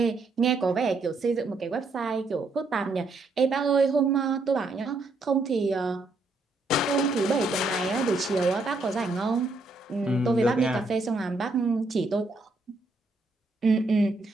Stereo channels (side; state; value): left; quieter; 3.2 dB